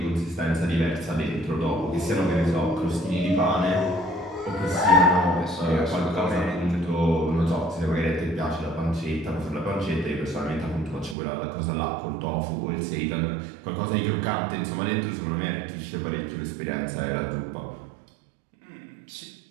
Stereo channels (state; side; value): drops out; left; at 11.2 s